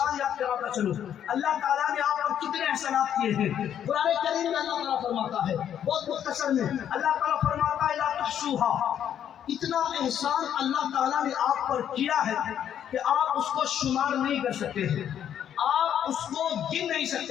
یاد کراتا چلوں. اللہ تعالیٰ نے آپ پر کتنے احسانات کیے ہیں. قرآن کریم میں اللہ تعالیٰ فرماتا ہے، بہت مختصر میں اللہ تعالیٰ فرماتا ہے لا تحصوها. اتنا احسان اللہ تعالیٰ نے آپ پر کیا ہے کہ آپ اس کو شمار نہیں کر سکتے ہیں، آپ اس کو گن نہیں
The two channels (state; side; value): quieter; right; 9.6 dB